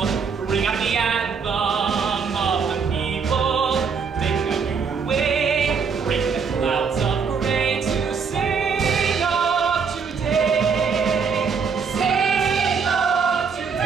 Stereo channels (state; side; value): quieter; left; 5.8 dB